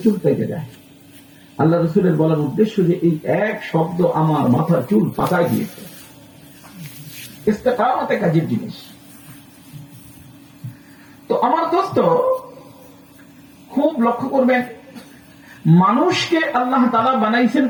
চুল পেকে যায়। আল্লাহ রাসূলের বলার উদ্দেশ্য যে এই এক শব্দ আমার মাথার চুল পাকায় দিয়েছে। ইস্তেকামত এক আজীব জিনিস। তো আমার দোস্ত খুব লক্ষ্য করবেন, মানুষকে আল্লাহ তাআলা বানাইছেন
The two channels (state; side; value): identical; both; correlation 1.00